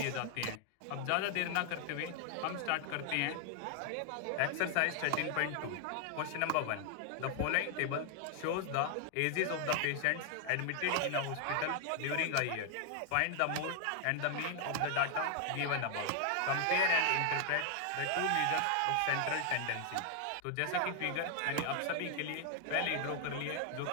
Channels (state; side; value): different; both; correlation 0.00